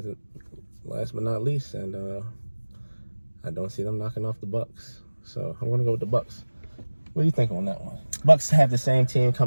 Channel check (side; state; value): both; inverted; correlation -1.00